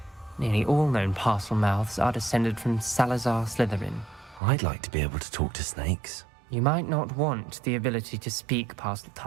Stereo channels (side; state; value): left; drops out; at 4.4 s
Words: Nearly all known parcel mouths are descended from Salazar Slytherin. I'd like to be able to talk to snakes. You might not want the ability to speak parcel